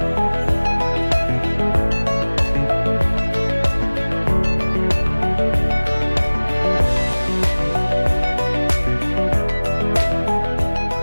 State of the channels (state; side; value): inverted; both; correlation -1.00